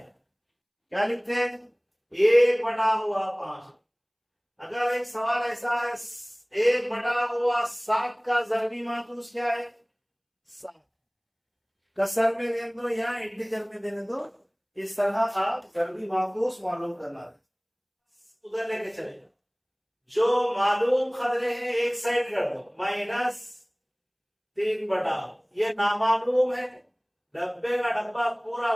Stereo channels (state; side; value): identical; both; correlation 1.00